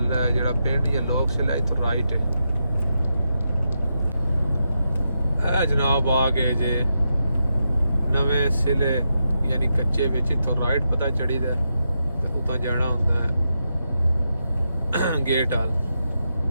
ਜਿਹੜਾ ਪਿੰਡ ਜਾਂ ਲੋਕ ਸਿਲਾ ਇੱਥੋਂ ਰਾਈਟ ਹੈ। ਇਹ ਜਨਾਬ ਆ ਗਏ ਜੇ ਨਵੇਂ ਸਿਲੇ ਯਾਨੀ ਕੱਚੇ ਵਿੱਚ, ਇੱਥੋਂ ਰਾਈਟ ਪਤਾ ਚੜੀਦਾ, ਉਤਾਂ ਜਾਣਾ ਹੁੰਦਾ ਹੈ ਗੇਟ ਹਾਲ।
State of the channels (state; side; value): inverted; both; correlation -0.85